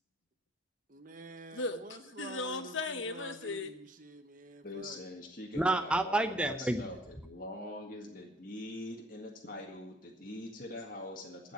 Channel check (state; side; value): normal; both; correlation 0.54